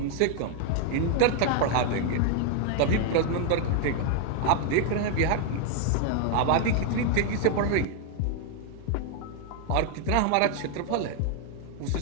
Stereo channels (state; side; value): different; both; correlation 0.00